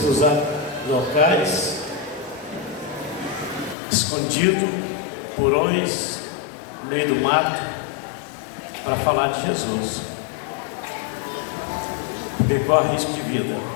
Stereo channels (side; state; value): right; drops out; at 3.8 s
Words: usar locais escondidos, porões, no meio do mato, para falar de Jesus, porque corre risco de vida.